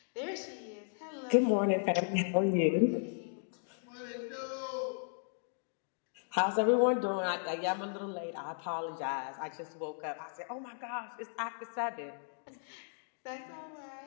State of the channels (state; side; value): silent; right; digital silence